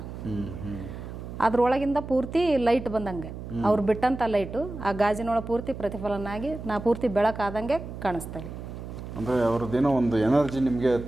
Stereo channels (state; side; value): noise; right; hum, 10 dB below the sound